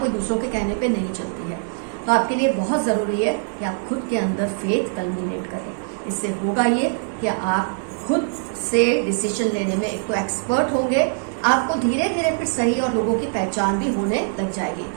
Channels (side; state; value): left; silent; digital silence